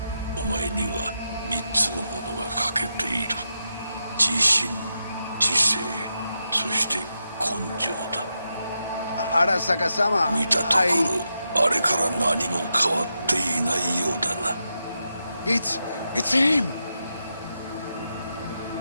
お前には3つのものが欠けている。自信、知性、そして根性だ。Arasaka sama. 見たところ、あれから何も変わっていないようだな。It's him!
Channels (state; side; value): inverted; both; correlation -0.86